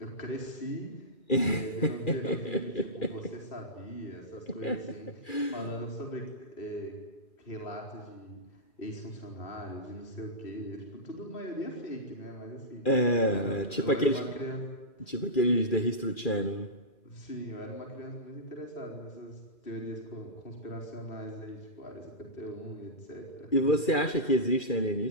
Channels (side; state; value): right; late; 2.4 ms